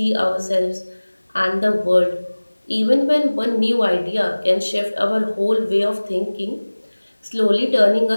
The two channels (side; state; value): both; inverted; correlation -1.00